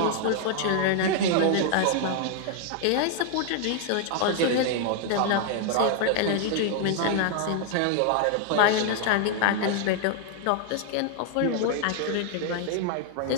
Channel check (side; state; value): both; different; correlation 0.00